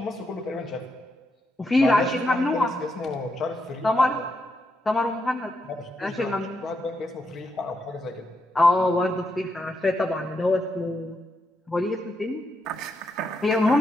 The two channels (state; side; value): normal; both; correlation 0.82